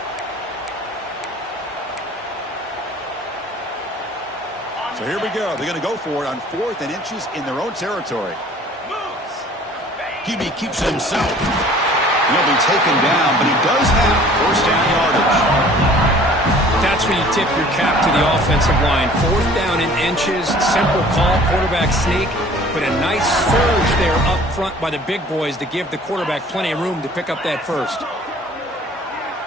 So here we go. They're going to go for it on 4th and inches in their own territory. QB keeps it himself. He'll be taken down, but he does have first down yardage. That's that's where you tip your cap to the offensive line. 4th down in inches, simple call, quarterback sneak, but a nice surge there up front by the big boys to give the quarterback plenty of room to pick up that first.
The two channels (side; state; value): both; normal; correlation 0.50